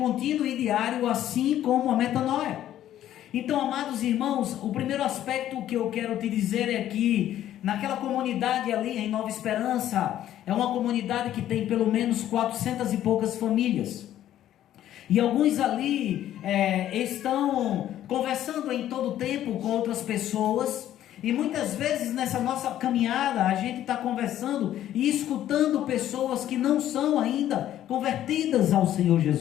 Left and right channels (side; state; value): right; quieter; 12.1 dB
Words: e diário, assim como a metanoia. Então, amados irmãos, o primeiro aspecto que eu quero te dizer é que naquela comunidade ali em Nova Esperança, é uma comunidade que tem pelo menos 400 e poucas famílias, e alguns ali estão conversando em todo tempo com outras pessoas, e muitas vezes nessa nossa caminhada a gente está conversando e escutando pessoas que não são ainda convertidas ao Senhor